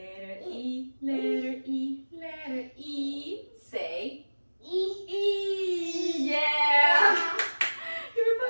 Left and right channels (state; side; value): inverted; both; correlation -1.00